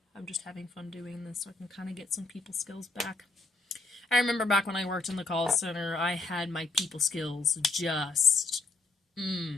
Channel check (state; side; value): quieter; right; 3.4 dB